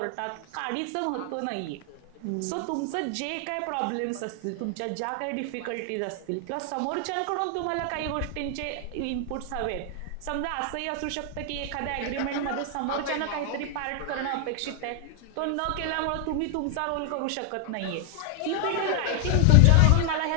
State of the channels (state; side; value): different; both; correlation 0.00